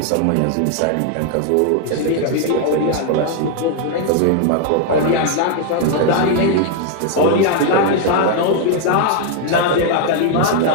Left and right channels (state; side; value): different; both; correlation 0.00